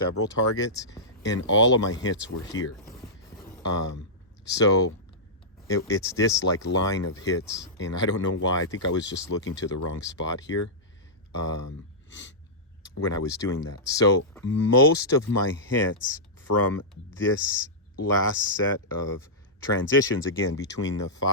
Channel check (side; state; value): both; normal; correlation -0.14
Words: targets, and all of my hits were here. So it's this like line of hits, and I don't know why. I think I was just looking to the wrong spot here. when I was doing that. So most of my hits from this last set of transitions, again, between the